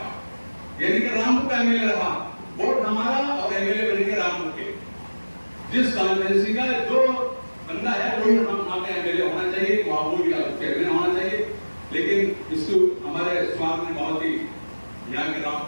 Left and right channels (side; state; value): both; inverted; correlation -1.00